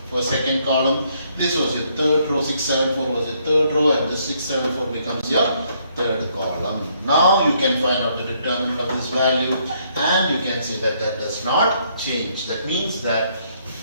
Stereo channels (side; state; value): both; inverted; correlation -0.70